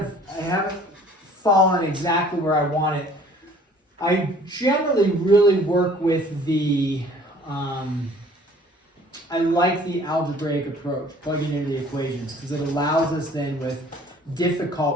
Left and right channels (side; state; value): both; normal; correlation 0.53